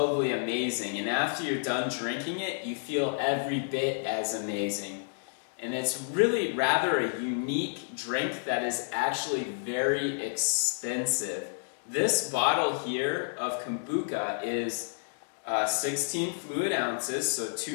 amazing. And after you're done drinking it, you feel every bit as amazing. And it's really rather a unique drink that is actually very expensive. This bottle here of Kombucha is 16 fluid ounces, so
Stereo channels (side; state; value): right; silent; digital silence